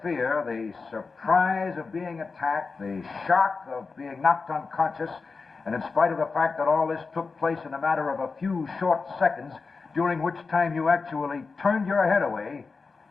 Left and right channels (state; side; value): quieter; right; 4.5 dB